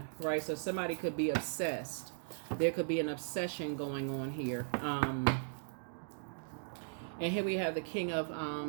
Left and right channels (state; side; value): silent; left; digital silence